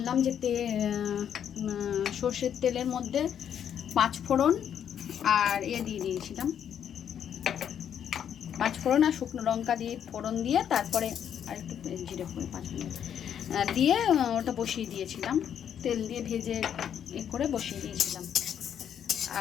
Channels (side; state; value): right; quieter; 9.0 dB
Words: যে সর্ষের তেলের মধ্যে 5 ফোড়ন আর দিয়ে দিয়েছিলাম, 5 ফোড়ন আর শুকনো লঙ্কা দিয়ে ফোড়ন দিয়ে তারপরে আর একটু জিরে করে 5 মিনিট দিয়ে ওটা বসিয়ে দিয়েছিলাম, তেল দিয়ে ভেজে করে বসিয়ে দিয়েছিলাম।